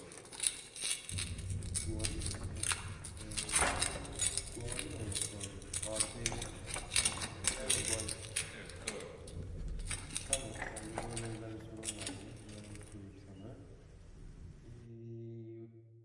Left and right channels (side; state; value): both; identical; correlation 1.00